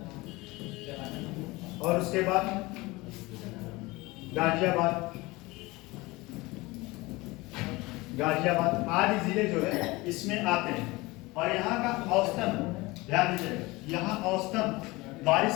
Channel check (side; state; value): right; quieter; 22.1 dB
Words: और उसके बाद गाजियाबाद, आदि जिले जो है इसमें आते हैं। और यहाँ का औसतन, ध्यान दीजिए, यहाँ औसतन